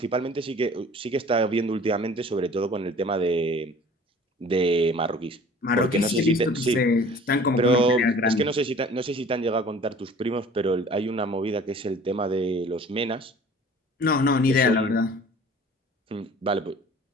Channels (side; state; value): both; normal; correlation 0.48